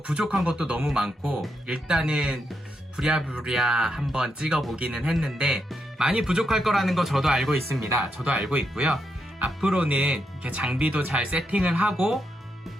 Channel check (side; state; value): both; normal; correlation 0.82